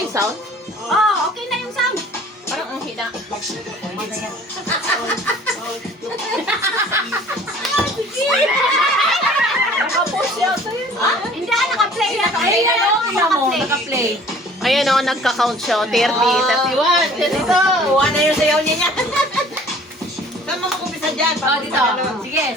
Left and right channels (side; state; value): both; normal; correlation 0.51